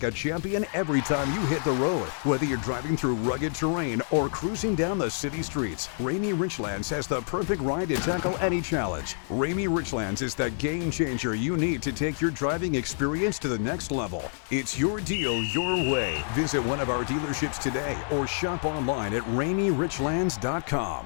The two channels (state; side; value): silent; right; digital silence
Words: a champion every time you hit the road. Whether you're driving through rugged terrain or cruising down the city streets, Rainy Richlands has the perfect ride to tackle any challenge. Rainy Richlands is the game changer you need to take your driving experience to the next level. It's your deal, your way. Visit one of our dealerships today or shop online at